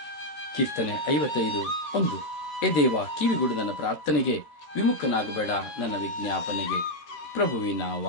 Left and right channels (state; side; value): late; right; 13 ms